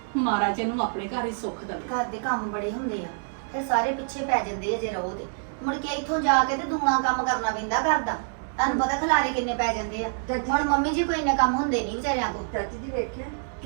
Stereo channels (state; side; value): silent; left; digital silence